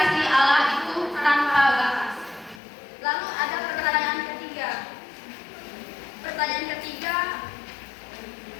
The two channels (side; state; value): right; drops out; at 2.6 s